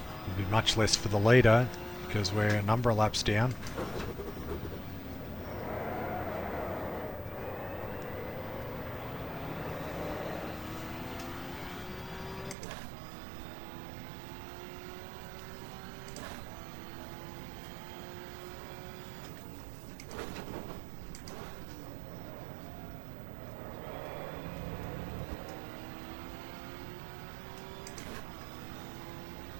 Much less for the leader because we're a number of laps down.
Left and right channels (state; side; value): drops out; left; at 12.6 s